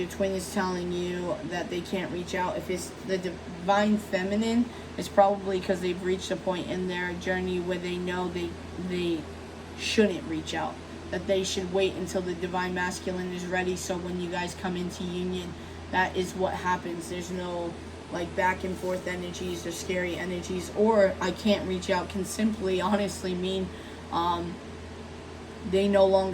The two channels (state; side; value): noise; right; rumble, 30 dB below the sound